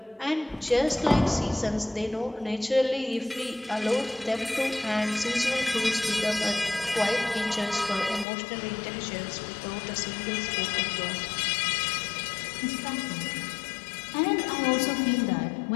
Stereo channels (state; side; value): drops out; right; at 8.2 s